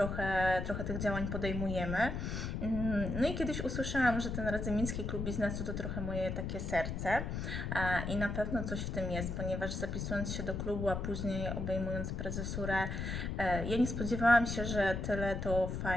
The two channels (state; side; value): noise; left; rumble, 3 dB below the sound